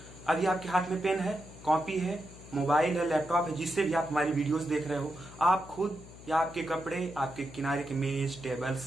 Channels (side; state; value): left; noise; hum, 18 dB below the sound